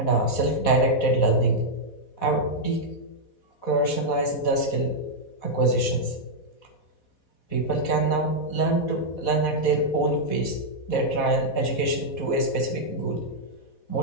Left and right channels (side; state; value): right; late; 4.1 ms